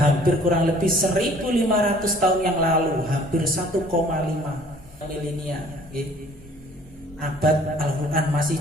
kurang lebih 1500 tahun yang lalu, hampir 1,5 milenia, abad Al-Qur'an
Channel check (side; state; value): both; normal; correlation 0.55